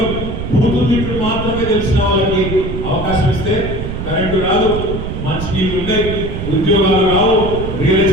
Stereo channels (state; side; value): noise; right; rumble, 5 dB below the sound